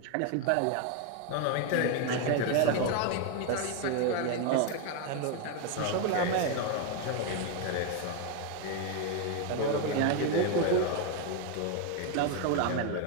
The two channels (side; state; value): both; different; correlation 0.01